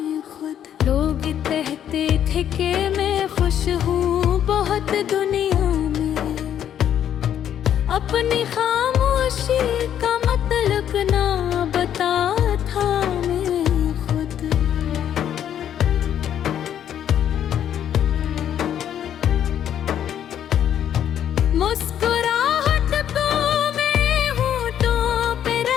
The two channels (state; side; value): quieter; right; 9.9 dB